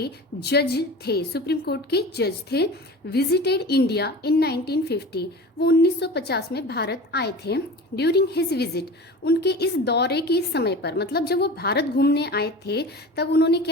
जज थे, सुप्रीम कोर्ट के जज थे। विजिटेड इंडिया इन 1950, वो 1950 में भारत आए थे। ड्यूरिंग हिज विजिट, उनके इस दौरे के समय पर, मतलब जब वो भारत घूमने आए थे तब उन्होंने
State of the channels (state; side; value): normal; both; correlation 0.35